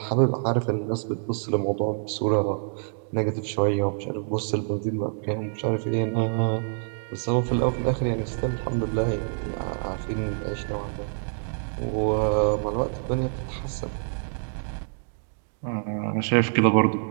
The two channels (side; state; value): left; silent; digital silence